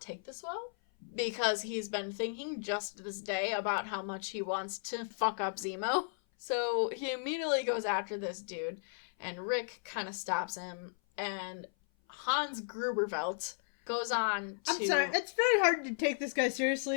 take this well, because he's been thinking just this day about how much he wants to fuck up Zemo. So he immediately goes after this dude, and Rick kind of stops him, and Hans Grubervelt goes on to... I'm sorry, it's very hard to take this guy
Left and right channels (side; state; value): right; silent; 55 dB below the other